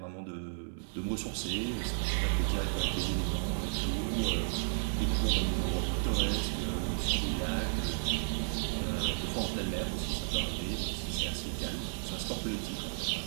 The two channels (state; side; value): silent; left; 56 dB below the other